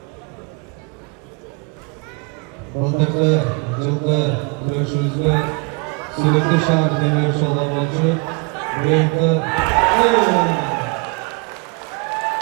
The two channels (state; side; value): quieter; left; 31.8 dB